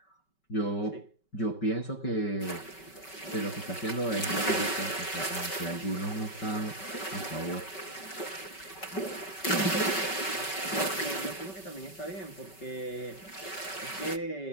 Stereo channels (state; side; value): late; right; 5.2 ms